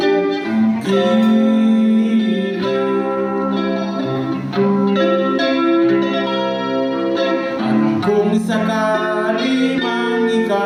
Kung sakali mang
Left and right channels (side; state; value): both; identical; correlation 1.00